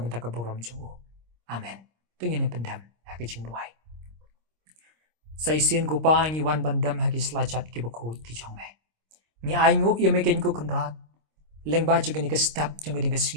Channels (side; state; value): left; late; 26 ms